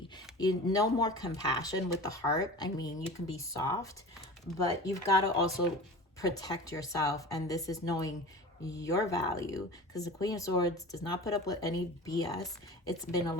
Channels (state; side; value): normal; both; correlation 0.35